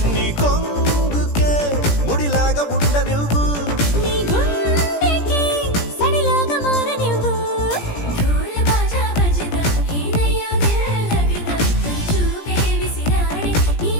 నీ కొంగుకే ముడిలాగా ఉండ నువ్వు నీ గుండెకి సడిలాగా మారనివ్వు ढोल बाजा बजदा हिनयो दिल लगदा तोरी చూపే విసిరాడే నీ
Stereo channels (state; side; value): late; right; 17 ms